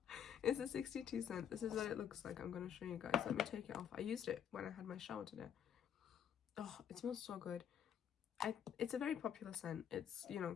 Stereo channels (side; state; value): right; quieter; 8.9 dB